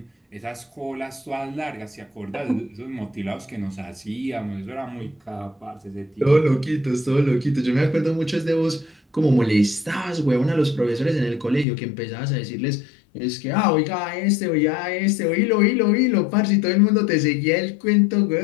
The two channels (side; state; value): right; drops out; at 11.7 s